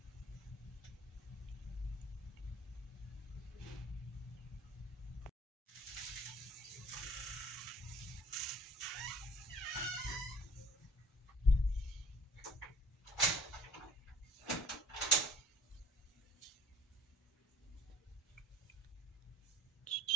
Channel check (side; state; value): both; normal; correlation 0.51